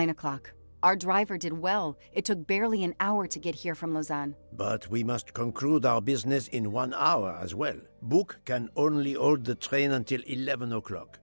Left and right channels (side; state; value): both; inverted; correlation -1.00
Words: o'clock. Our driver did well. It took barely an hour to get here from Lausanne. But we must conclude our business in 1 hour as well. Book can only hold the train until 11 o'clock.